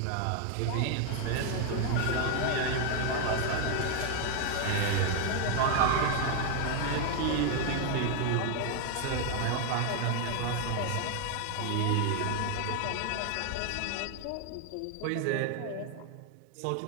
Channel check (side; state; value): both; different; correlation 0.00